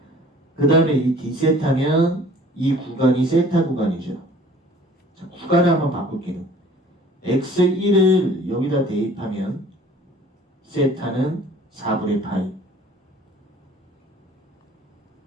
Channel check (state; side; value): normal; both; correlation 0.50